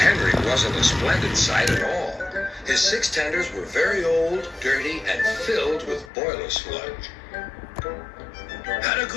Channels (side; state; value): right; drops out; at 6.1 s